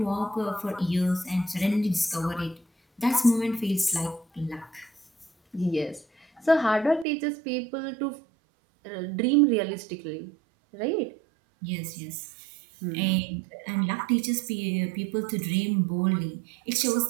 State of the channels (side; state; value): left; drops out; at 7.1 s